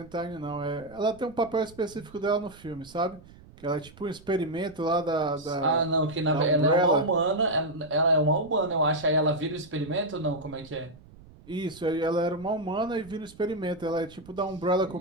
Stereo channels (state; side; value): noise; right; rumble, 22 dB below the sound